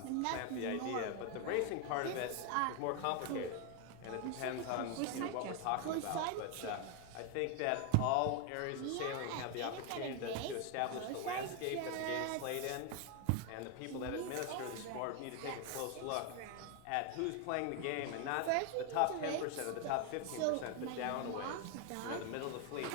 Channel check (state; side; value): different; both; correlation 0.01